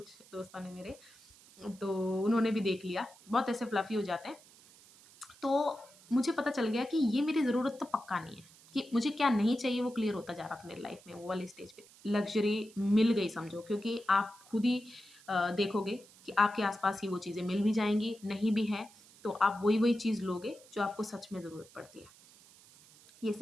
दोस्तों ने मेरे, तो उन्होंने भी देख लिया, बहुत ऐसे फ्लफ़ी हो जाते हैं। तो मुझे पता चल गया कि ये मेरी ज़रूरत तो पक्का नहीं है, कि मुझे क्या नहीं चाहिए वो क्लियर होता जा रहा था मेरी लाइफ में वो वाली स्टेज पे। लग्ज़री मिल गई समझो क्योंकि आप खुद ही देखोगे कि आपके आस-पास ही वो चीज़ें मिल भी जाएँगी, नहीं भी है तो आप वही-वही चीज़ लोगे जो आपको सच में ज़रूरत पड़ती है। ये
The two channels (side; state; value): right; noise; hiss, 24 dB below the sound